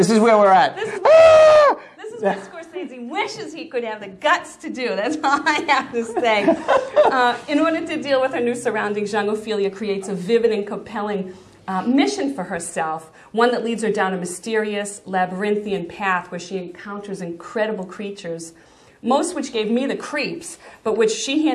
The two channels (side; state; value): both; identical; correlation 1.00